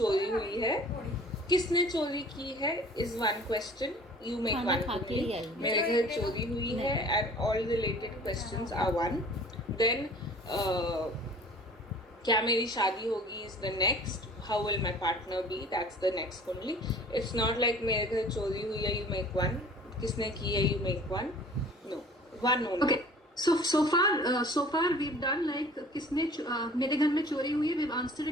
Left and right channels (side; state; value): both; normal; correlation 0.48